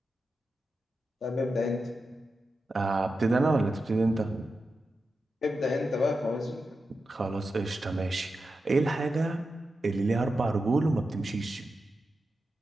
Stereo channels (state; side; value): normal; both; correlation 0.90